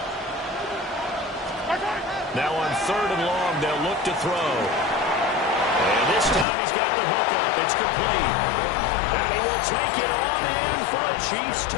Now on 3rd and long, they'll look to throw. And this time he's got the hookup. It's complete. And he will take it on in for a Chiefs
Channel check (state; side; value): drops out; right; at 6.5 s